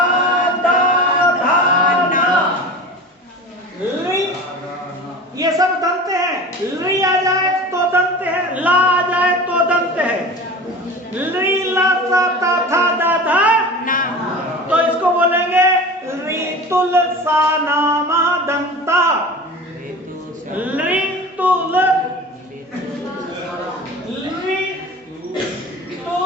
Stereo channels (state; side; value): normal; both; correlation 0.35